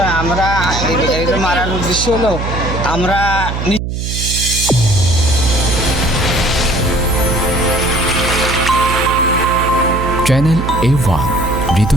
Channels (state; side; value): noise; right; hum, 4 dB below the sound